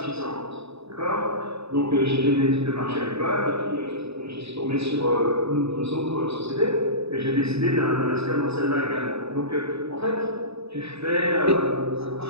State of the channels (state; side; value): late; left; 0.79 ms